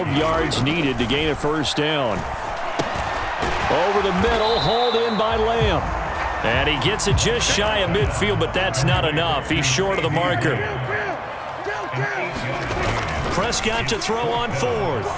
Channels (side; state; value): both; identical; correlation 1.00